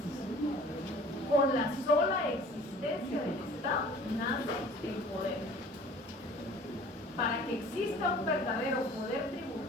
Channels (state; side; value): normal; both; correlation 0.48